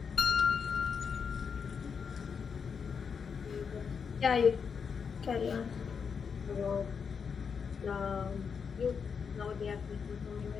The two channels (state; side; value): quieter; right; 6.2 dB